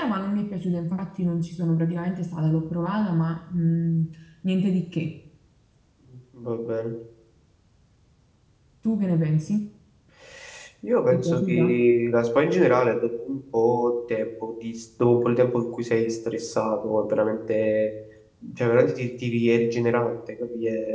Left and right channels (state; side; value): identical; both; correlation 1.00